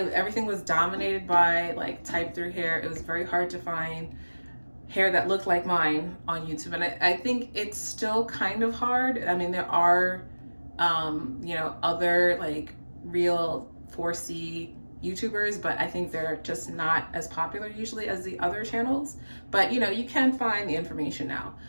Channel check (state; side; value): inverted; both; correlation -1.00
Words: was dominated by like type through hair. It was very hard to find hair that looked like mine on YouTube. And I think it's still kind of hard. I mean, there are, you know, other like real 4C YouTubers, but I think they're just not as popular usually as the other channels. But you know, you can find the information now.